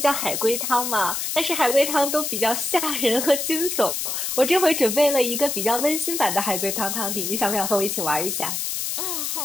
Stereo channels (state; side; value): noise; left; hiss, 2 dB below the sound